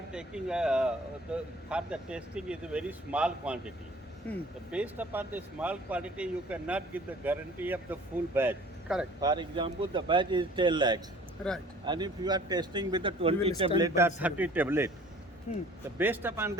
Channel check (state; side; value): normal; both; correlation 0.50